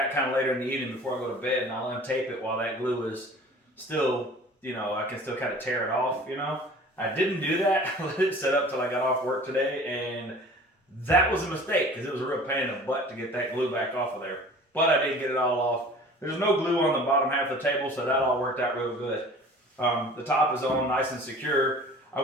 kind of later in the evening before I go to bed and I'll untape it while that glue is still, you know, I can still kind of tear it off, you know. I didn't do that. I let it set up till I got off work today, and that was a mistake because it was a real pain in the butt to get that glue back off of there. But I did get it all off. There's no glue on the bottom half of the table, so that all worked out real good. The top is on nice and secure. I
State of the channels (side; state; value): both; normal; correlation 0.45